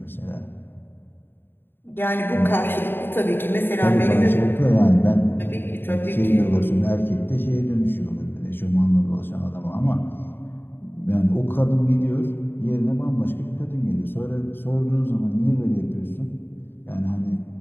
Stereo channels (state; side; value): late; right; 0.10 ms